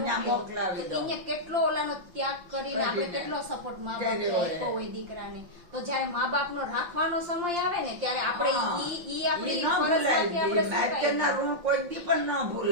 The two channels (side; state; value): left; late; 5.8 ms